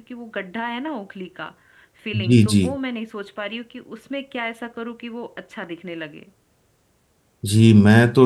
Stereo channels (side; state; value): both; identical; correlation 1.00